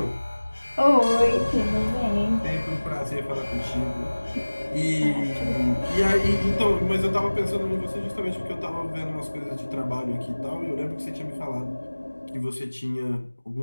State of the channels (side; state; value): both; inverted; correlation -1.00